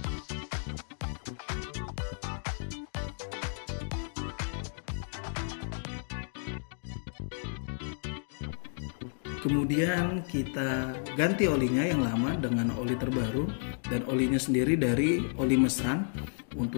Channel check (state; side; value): silent; right; digital silence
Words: Kemudian kita ganti olinya yang lama dengan oli terbaru, dan olinya sendiri dari oli mesran.